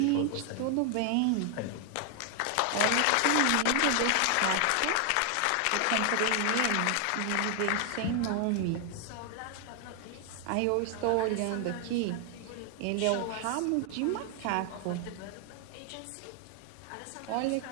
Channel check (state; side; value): different; both; correlation 0.00